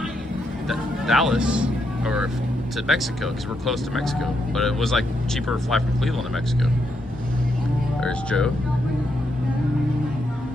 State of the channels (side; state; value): both; normal; correlation 0.80